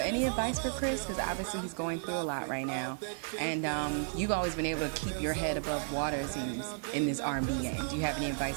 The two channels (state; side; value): silent; left; digital silence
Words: advice for Chris? Because obviously he's going through a lot right now, and you've always been able to keep your head above water, it seems, in this R&B game. Do you have any